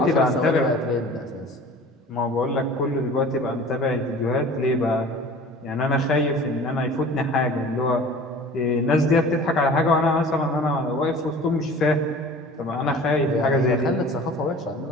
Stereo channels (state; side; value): normal; both; correlation 0.43